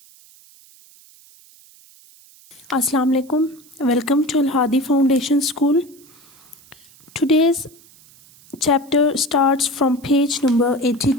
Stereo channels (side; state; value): right; noise; hiss, 26 dB below the sound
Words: Assalamu alaikum. Welcome to Al Hadi Foundation School. Today's chapter starts from page number